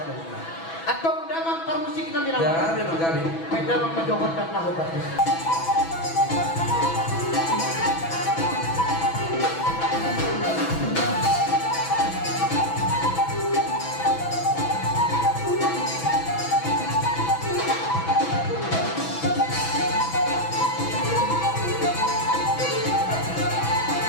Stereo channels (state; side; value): late; right; 6.1 ms